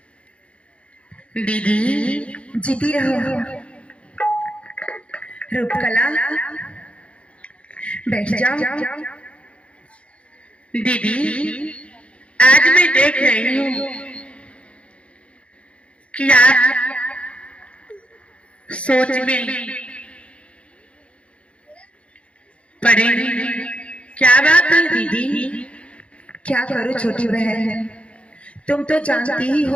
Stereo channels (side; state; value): right; late; 0.061 ms